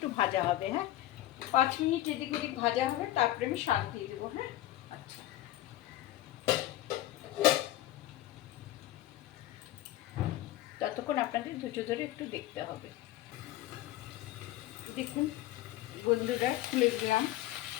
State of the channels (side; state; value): right; quieter; 14.8 dB